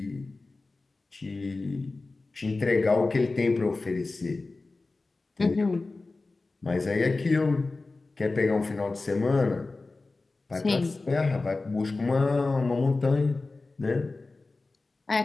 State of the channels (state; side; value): quieter; right; 3.5 dB